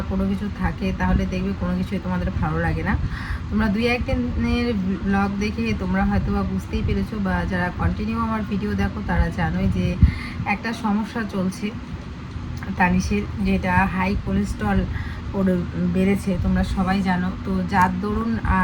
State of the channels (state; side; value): identical; both; correlation 1.00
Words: কোনো কিছু থাকে তাহলে দেখবে কোনো কিছুই তোমাদের ভালো লাগে না। তোমরা 2-1 দিনের ব্লগ দেখে তোমরা হয়তো বা বুঝতেই পেরেছো, বা যারা কন্টিনিউ আমার ভিডিও দেখো তারা জানোই যে একটা সমস্যা চলছে তানিশের, যেটা হাই কোলেস্ট্রল বেড়েছে, তোমরা সবাই জানো। তো যার দরুন